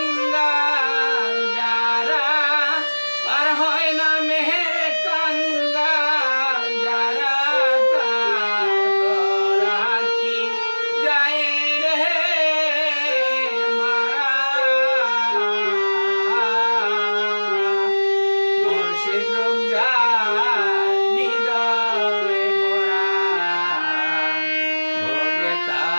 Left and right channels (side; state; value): both; inverted; correlation -1.00